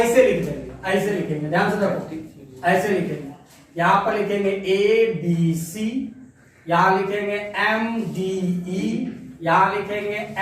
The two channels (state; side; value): identical; both; correlation 1.00